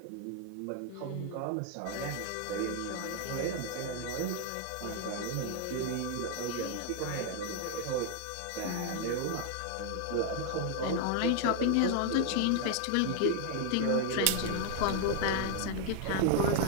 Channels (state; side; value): different; both; correlation 0.00